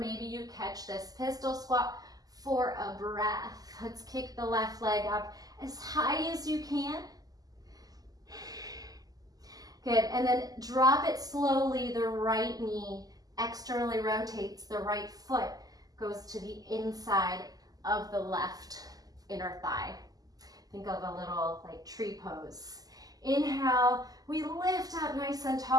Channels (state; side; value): late; left; 0.18 ms